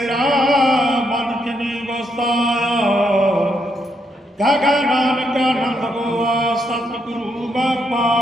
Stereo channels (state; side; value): normal; both; correlation 0.77